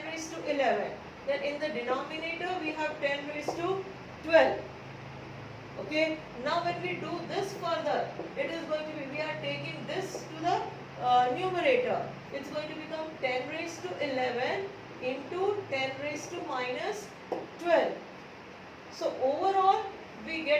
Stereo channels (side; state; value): both; identical; correlation 1.00